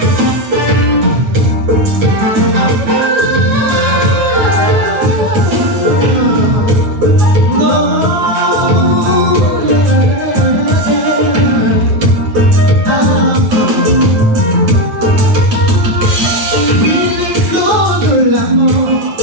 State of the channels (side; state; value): left; late; 8.9 ms